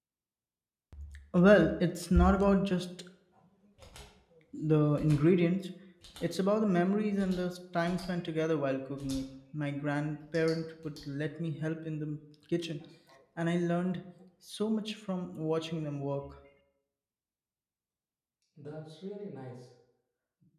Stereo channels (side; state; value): both; identical; correlation 1.00